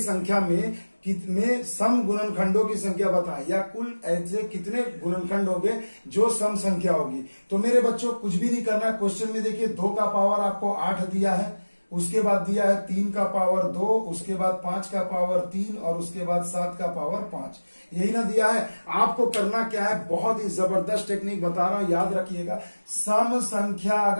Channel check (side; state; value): both; inverted; correlation -1.00